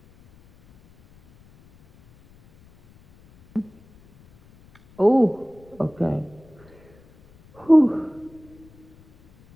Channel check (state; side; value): noise; left; rumble, 28 dB below the sound